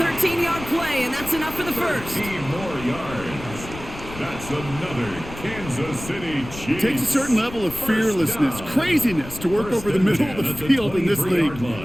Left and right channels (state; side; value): noise; left; rumble, 13 dB below the sound